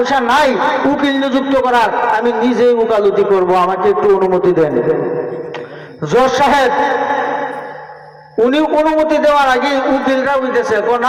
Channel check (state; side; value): identical; both; correlation 1.00